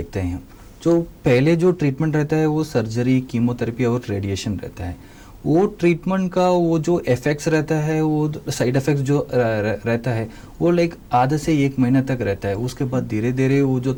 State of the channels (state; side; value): identical; both; correlation 1.00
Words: हैं। जो पहले जो ट्रीटमेंट रहता है वो सर्जरी, कीमोथेरेपी और रेडिएशन रहता है। वो ट्रीटमेंट का वो जो इफेक्ट्स रहता है, वो साइड इफेक्ट्स जो रहता है वो लाइक आधे से 1 महीने तक रहता है। उसके बाद धीरे धीरे वो जो